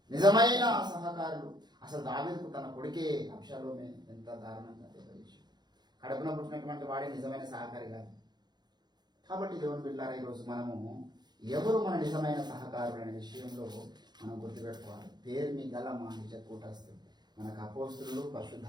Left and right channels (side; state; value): left; late; 0.21 ms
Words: నిజమైన సహకారులు. అసలు దావీదుకు తన కొడుకే అబ్షాలోమే ఎంత దారుణంగా తెలియజేసి కడుపున పుట్టినటువంటి వాడే నిజమైన సహకారి కాదు. కాబట్టి దేవుని బిడ్డలారా, ఈరోజు మనము ఎవరు మన నిజమైన సహకారులు అనే విషయంలో మనం గుర్తుపెట్టుకోవాలి. పేరు మీ గల మా నిజ కూటస్థులు, మనకు అపోస్తులు,